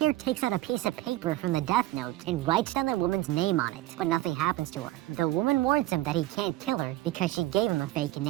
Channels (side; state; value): left; quieter; 16.5 dB